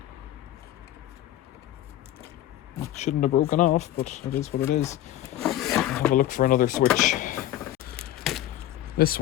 It shouldn't have broken off, but it is what it is. I'll have a look for another switch. This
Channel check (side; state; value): right; quieter; 13.4 dB